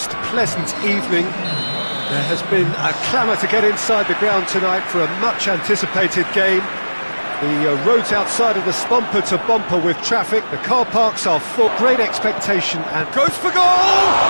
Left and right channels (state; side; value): inverted; both; correlation -1.00